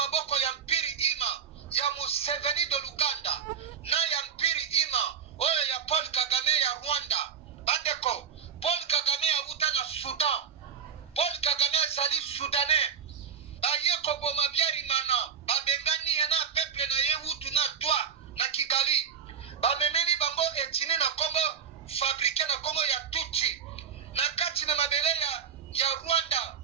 ya mpiri ima ya Museveni de Luganda na ya mpiri ima oyo ya Paul Kagame ya Rwanda. Bandeko Paul Kagame ya uta na Sudan, Paul Kagame azali Soudanais baye koboma biari mana babengani na peuple na ye utu na toi na Kigali bamemeli bango etini na Congo fabriqué na Congo ya tuti na kati na mabele ya Rwanda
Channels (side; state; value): left; quieter; 7.5 dB